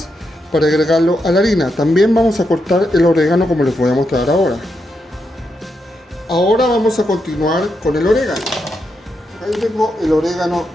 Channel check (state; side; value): normal; both; correlation 0.83